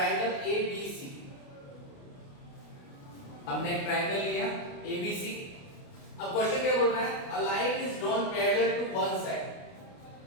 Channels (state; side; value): late; right; 29 ms